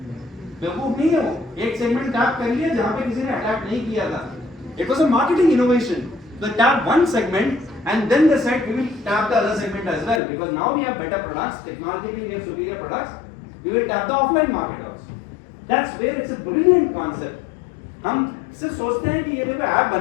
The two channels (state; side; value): drops out; right; at 10.2 s